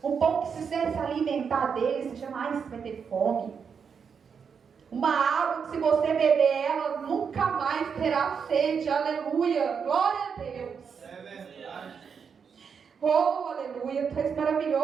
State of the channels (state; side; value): quieter; left; 6.5 dB